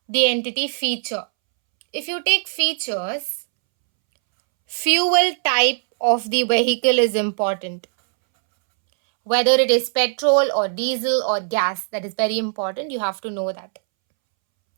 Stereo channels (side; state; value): left; silent; 65 dB below the other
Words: the entity feature. If you take features, fuel type of the vehicle is important. Whether it is petrol or diesel or gas, that is very important. You have to know that.